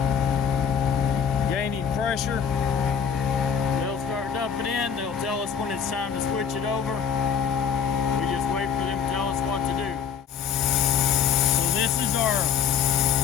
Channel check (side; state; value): right; quieter; 7.4 dB